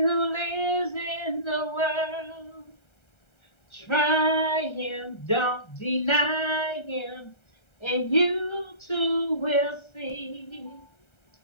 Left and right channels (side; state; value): right; late; 1.3 ms